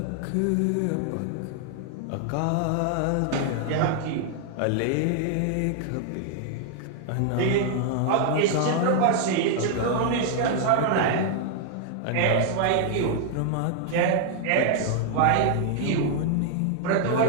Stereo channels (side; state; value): both; different; correlation 0.00